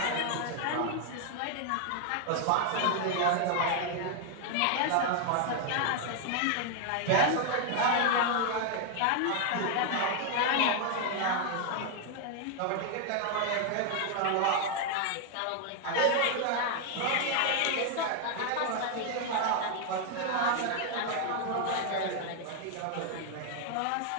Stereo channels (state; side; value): different; both; correlation 0.00